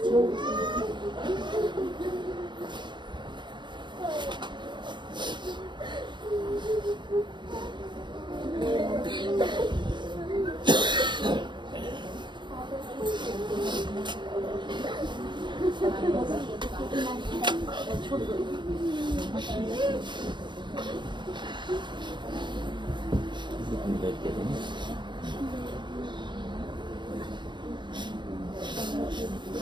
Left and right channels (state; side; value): late; left; 0.22 ms